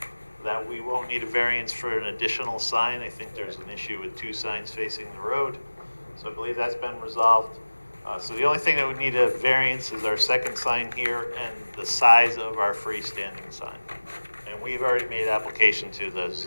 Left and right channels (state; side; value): inverted; both; correlation -1.00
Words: that we won't need a variance for an additional sign. I think there's an issue with two signs facing the road. So I believe that's been resolved. So the only thing that would need a variance is our second sign here and the size of our freestanding sign. And we've already made application to the